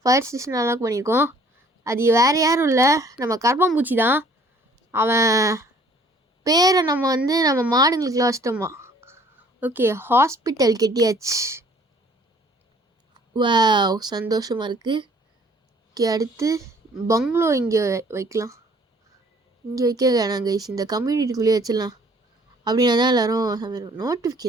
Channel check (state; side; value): normal; both; correlation 0.57